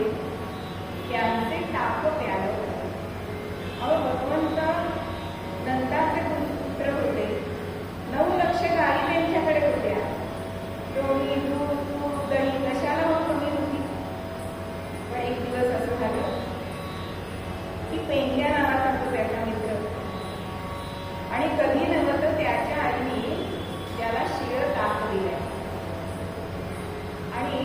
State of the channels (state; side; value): identical; both; correlation 1.00